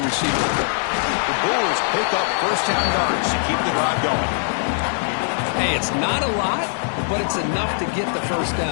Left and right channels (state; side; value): silent; right; 60 dB below the other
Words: receiver. The Bulls pick up 1st down yards to keep the drive going. Hey, it's not a lot, but it's enough to get the 1st